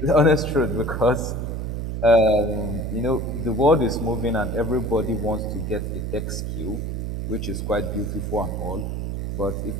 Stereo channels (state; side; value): noise; right; hum, 3 dB below the sound